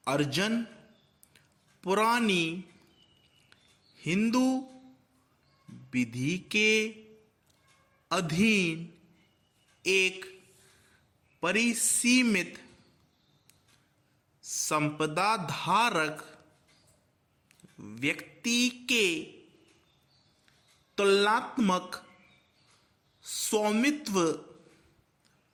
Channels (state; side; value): identical; both; correlation 1.00